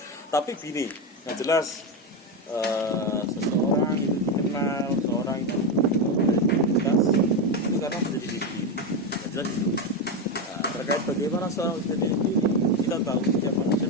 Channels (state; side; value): normal; both; correlation 0.11